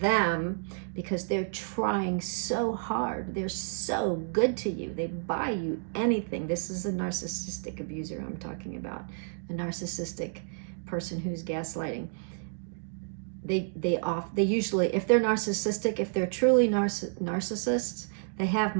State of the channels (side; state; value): left; silent; digital silence